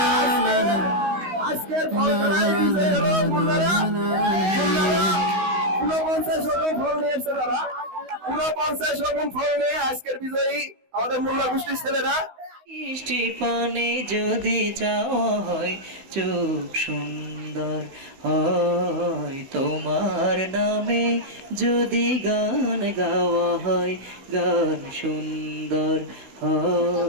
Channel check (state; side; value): late; left; 16 ms